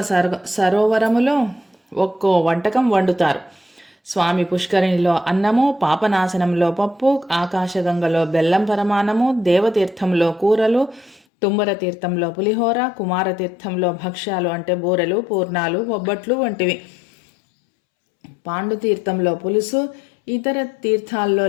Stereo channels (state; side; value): drops out; right; at 11.2 s